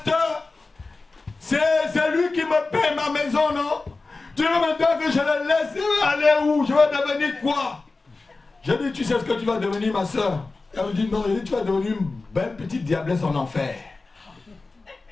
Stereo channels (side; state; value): right; quieter; 3.6 dB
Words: c'est lui qui me paie ma maison, non? Tu veux maintenant que je le laisse aller où? Je vais devenir quoi? J'ai dit, tu sais ce que tu vas devenir, ma soeur? Elle me dit, non, tu vas devenir une belle petite diablesse en enfer.